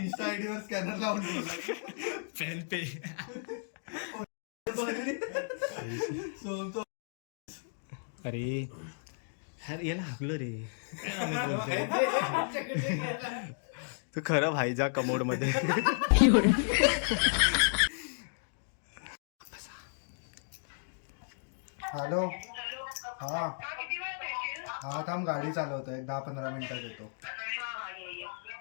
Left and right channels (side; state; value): right; silent; digital silence